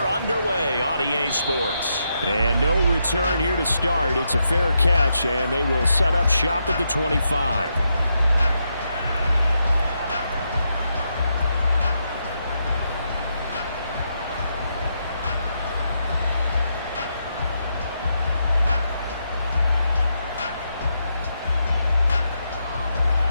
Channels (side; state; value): both; inverted; correlation -0.82